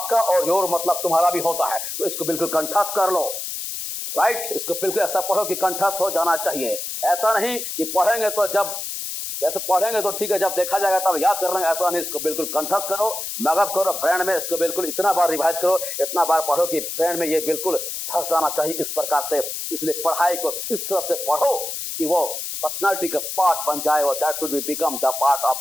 और योर मतलब तुम्हारा भी होता है। तो इसको बिल्कुल कंठस्थ कर लो, राइट। इसको बिल्कुल ऐसा पढ़ो कि कंठस्थ हो जाना चाहिए। ऐसा नहीं कि पढ़ेंगे तो जब वैसे पढ़ेंगे तो ठीक है, जब देखा जाएगा तब याद कर लेंगे, ऐसा नहीं। इसको बिल्कुल कंठस्थ करो, मगअप करो ब्रेन में। इसको बिल्कुल इतना बार रिवाइज करो, इतना बार पढ़ो कि ब्रेन में ये बिल्कुल धंस जाना चाहिए इस प्रकार से। इसलिए पढ़ाई को इस तरह से पढ़ो कि वो पर्सनालिटी का पार्ट बन जाए, और that should be become the part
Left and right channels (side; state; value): left; noise; hiss, 5 dB below the sound